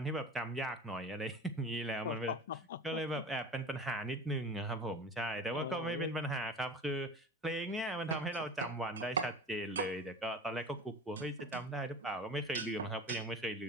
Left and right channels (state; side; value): normal; both; correlation 0.36